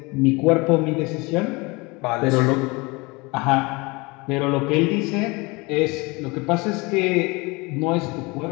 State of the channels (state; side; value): quieter; right; 25.7 dB